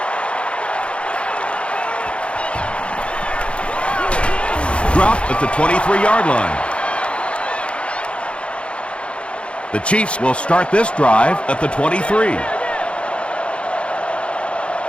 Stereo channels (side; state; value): right; late; 0.059 ms